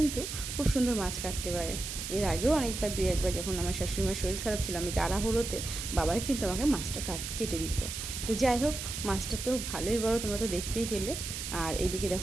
খুব সুন্দর মাছ কাটতে পারে। এর আগেও অনেকবার দুই একবার যখন আমার শাশুড়িমার শরীর খারাপ ছিল, আমি তাড়াহুড়োতে বাবাই কিন্তু আমাকে মাছটা কেটে দিত। তো যাই হোক, মাছটা তো ভালোই বড়, তোমরা তো দেখতেই পেলে। আর এইদিকে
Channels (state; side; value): noise; right; hiss, 6 dB below the sound